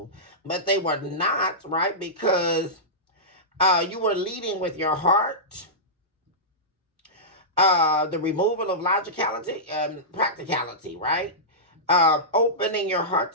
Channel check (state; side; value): normal; both; correlation -0.15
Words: But they were not, right? Because you were leading with your heart. The removal of logicality and practicality, right? Opening your heart